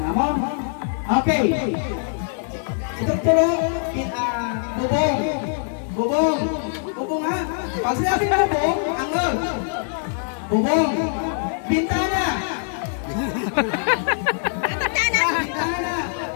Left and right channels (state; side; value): silent; right; 64 dB below the other